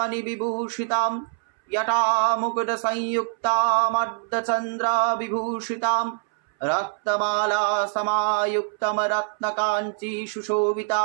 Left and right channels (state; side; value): silent; left; 62 dB below the other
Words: বিভূষিতাম यटा मुकुट संयुक्तामर्धचन्द्र विभूषितां रक्तमाला समायुक्तं रत्नकाञ्ची